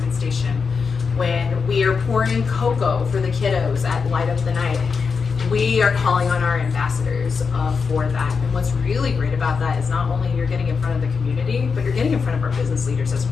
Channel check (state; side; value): quieter; right; 5.4 dB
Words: Station, when we are pouring cocoa for the kiddos at Light Up the Night, we are calling on our ambassadors for that. And what's really great about that is not only you're getting in front of the community, but you're getting in front of our business leaders as